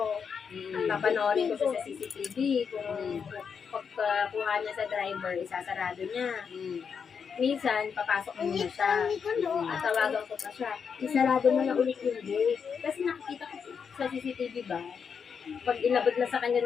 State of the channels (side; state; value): right; quieter; 6.5 dB